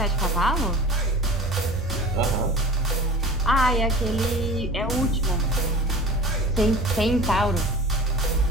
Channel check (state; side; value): normal; both; correlation 0.38